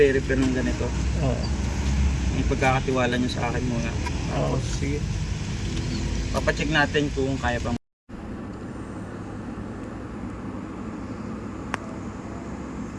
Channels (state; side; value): identical; both; correlation 1.00